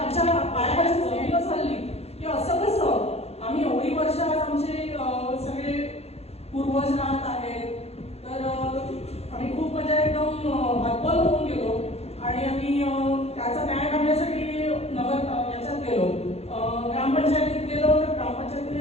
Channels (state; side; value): late; right; 0.30 ms